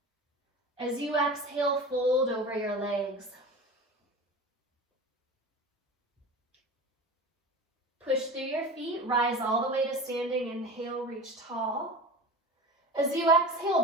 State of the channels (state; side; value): normal; both; correlation 0.32